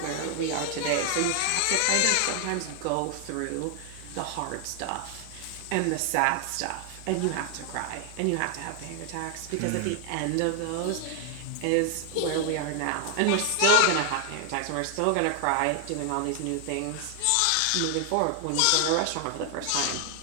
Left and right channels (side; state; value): both; different; correlation 0.00